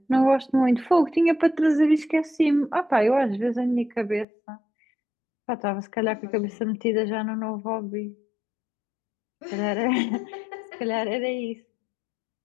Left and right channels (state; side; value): drops out; right; at 4.2 s